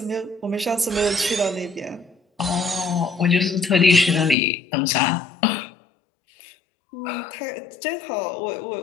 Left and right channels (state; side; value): drops out; right; at 4.4 s